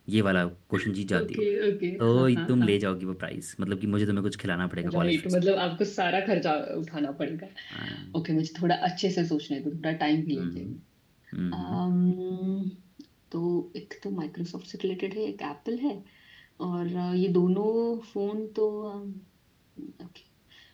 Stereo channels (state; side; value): identical; both; correlation 1.00